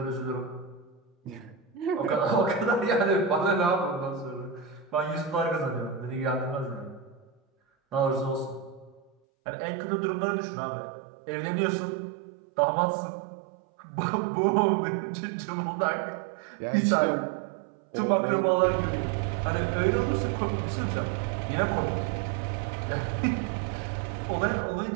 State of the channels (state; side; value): drops out; left; at 9.1 s